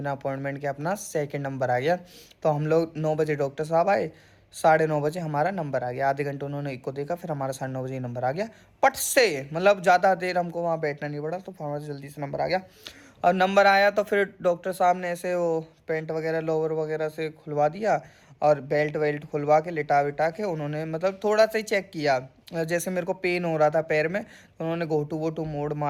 अपॉइंटमेंट के अपना सेकंड नंबर आ गया। तो हम लोग 9 बजे डॉक्टर साहब आए, 9:30 बजे हमारा नंबर आ गया। आधे घंटे उन्होंने एक को देखा, फिर हमारा 9:30 बजे नंबर आ गया पट से, मतलब ज़्यादा देर हमको वहाँ बैठना नहीं पड़ा, तो हमारा जल्दी से नंबर आ गया। और नंबर आया तो फिर डॉक्टर साहब ने ऐसे वो पेंट वगैरह लोअर वगैरह से खुलवा दिया और बेल्ट वेल्ट खुलवा के लिटा विटा के उन्होंने मतलब थोड़ा सा ही चेक किया। जैसे मेरे को पेन हो रहा था पैर में, तो उन्होंने घोटू वोटू मोड़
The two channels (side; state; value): both; identical; correlation 1.00